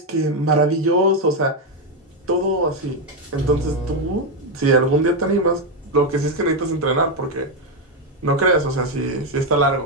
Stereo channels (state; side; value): normal; both; correlation 0.05